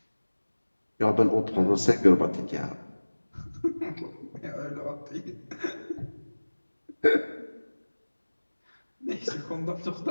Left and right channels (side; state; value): both; inverted; correlation -1.00